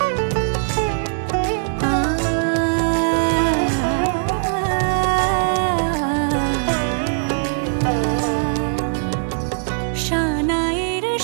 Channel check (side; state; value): left; silent; digital silence